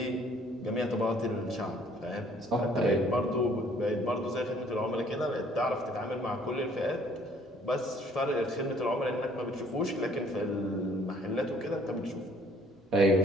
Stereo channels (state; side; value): normal; both; correlation 0.60